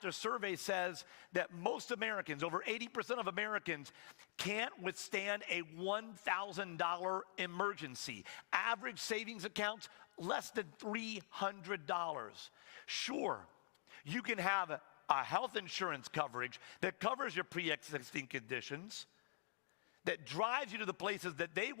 survey says that most Americans, over 80% of Americans, can't withstand a $1,000 emergency. Average savings accounts, less than $300. Sure, you can have a health insurance coverage that covers your pre-existing conditions, that drives you to the places that they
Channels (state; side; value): silent; right; digital silence